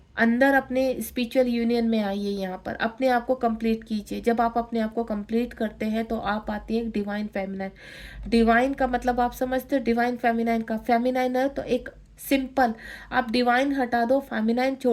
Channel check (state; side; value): identical; both; correlation 1.00